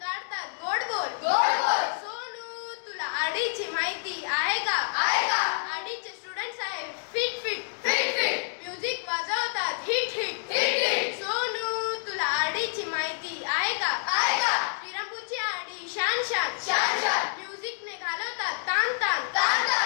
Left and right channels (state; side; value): silent; right; digital silence